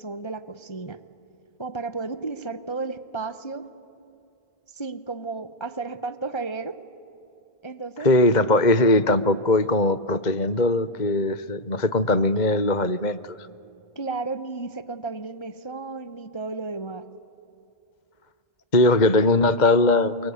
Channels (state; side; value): late; right; 2.0 ms